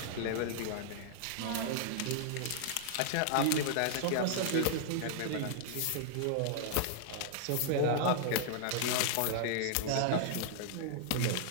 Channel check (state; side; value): different; both; correlation -0.01